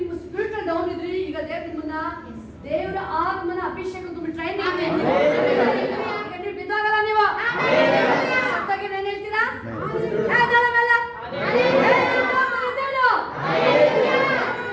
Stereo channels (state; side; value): identical; both; correlation 1.00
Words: ಸ್ಪಿರಿಟ್ ಡೌನ್ ಇದ್ರಿ, ಈಗ ದೇವ್ರ ನಿಮ್ಮನ್ನ ದೇವರ ಆತ್ಮನ ಅಭಿಷೇಕ ತುಂಬಿ ಟ್ರೈನಿಂಗ್ ಈಗ ನೀವು ಬಿದ್ದಾಗಲ್ಲ. ನೀವು ಸತ್ತಾಗಿ ಏನ್ ಹೇಳ್ತೀರಾ?